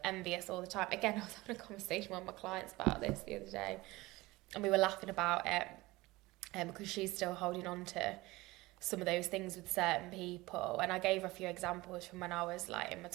envious all the time. Again, I was having a conversation with my clients about this the other day, and we were laughing about it because she's still holding on to some of those things with certain people, and I gave her a few examples from when I was like in my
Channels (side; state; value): left; quieter; 20.4 dB